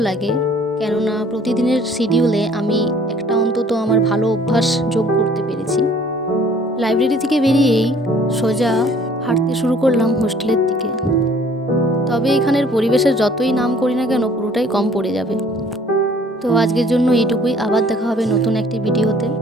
লাগে, কেননা প্রতিদিনের শিডিউলে আমি একটা অন্তত আমার ভালো অভ্যাস যোগ করতে পেরেছি। লাইব্রেরি থেকে বেরিয়েই সোজা হাঁটতে শুরু করলাম হোস্টেলের দিকে। তবে এখানের পরিবেশের যতই নাম করি না কেন, পুরোটাই কম পড়ে যাবে। তো আজকের জন্য এইটুকুই, আবার দেখা হবে নতুন একটি ভিডিওতে।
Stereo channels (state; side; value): normal; both; correlation 0.56